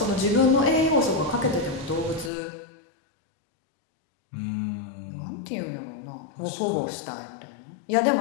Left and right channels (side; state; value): right; drops out; at 2.3 s